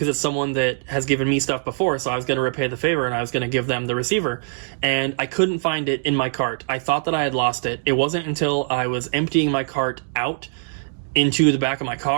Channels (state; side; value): silent; left; digital silence